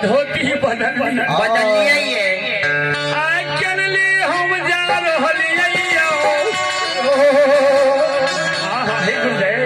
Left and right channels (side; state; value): both; identical; correlation 1.00